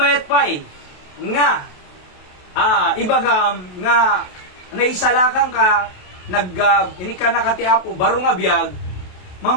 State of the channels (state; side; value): late; right; 28 ms